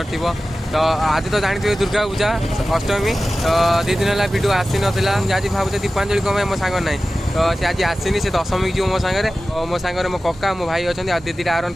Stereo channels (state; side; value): normal; both; correlation 0.95